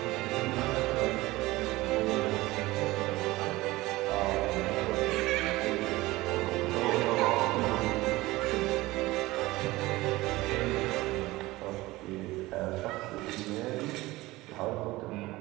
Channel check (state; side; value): quieter; left; 19.3 dB